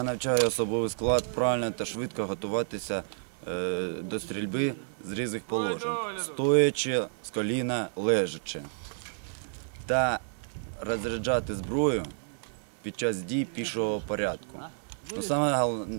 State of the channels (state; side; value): silent; left; digital silence